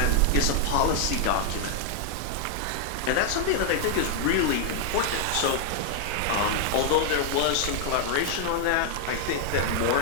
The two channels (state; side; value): different; both; correlation 0.00